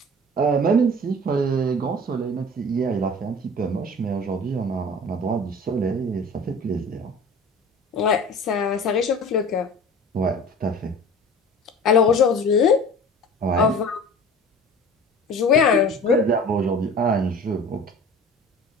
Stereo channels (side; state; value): both; normal; correlation 0.40